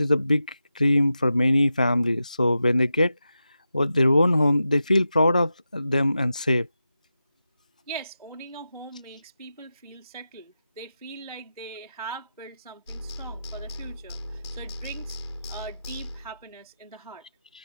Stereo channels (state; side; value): inverted; both; correlation -0.91